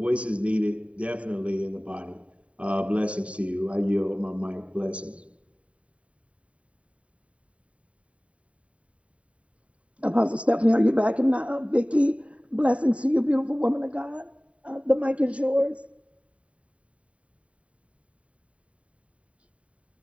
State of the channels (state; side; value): late; left; 0.064 ms